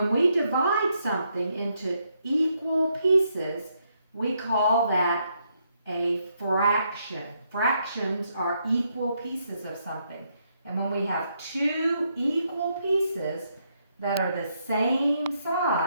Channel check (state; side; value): inverted; both; correlation -0.76